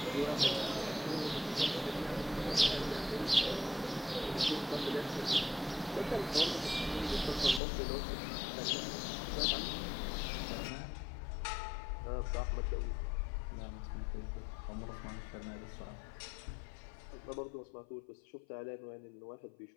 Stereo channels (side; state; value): right; drops out; at 7.6 s